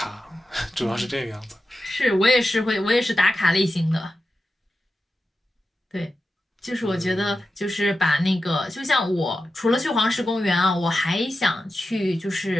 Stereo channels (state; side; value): normal; both; correlation 0.91